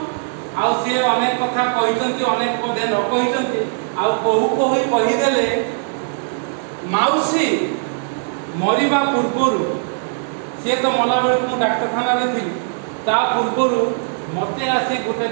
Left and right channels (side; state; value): left; silent; digital silence